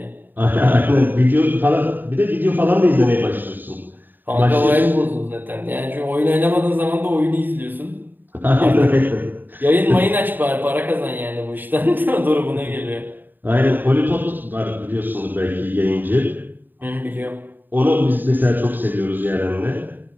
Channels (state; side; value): late; left; 0.091 ms